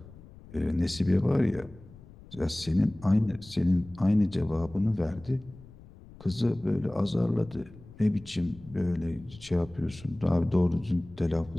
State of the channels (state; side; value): noise; left; rumble, 20 dB below the sound